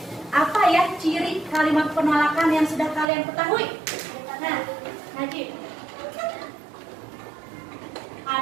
apa ya ciri kalimat penolakan yang sudah kalian ketahui? Nah, Najib.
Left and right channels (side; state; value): left; drops out; at 3.1 s